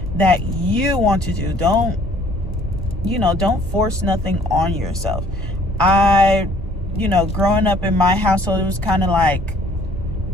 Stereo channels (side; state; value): both; normal; correlation 0.58